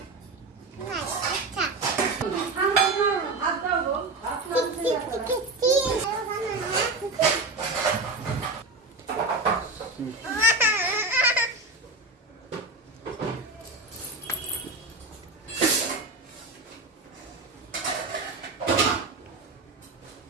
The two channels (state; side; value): quieter; left; 3.2 dB